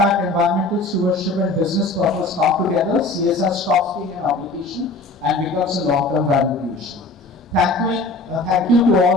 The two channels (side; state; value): right; quieter; 3.1 dB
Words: environmental stewardship, and business purpose come together, CSR stops being an obligation and becomes a long-term value creation. Thank you to